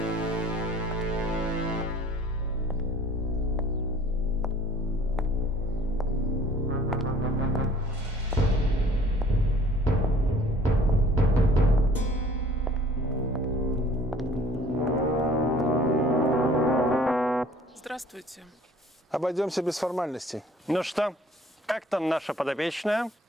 Здравствуйте. Обойдемся без формальностей. Ну что, как там наша подопечная?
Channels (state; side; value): normal; both; correlation 0.53